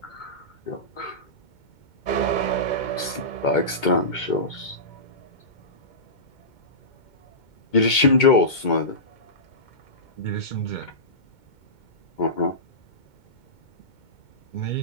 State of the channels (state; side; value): late; right; 2.2 ms